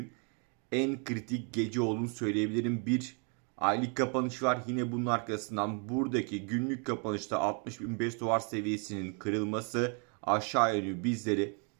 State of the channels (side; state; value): left; quieter; 38.3 dB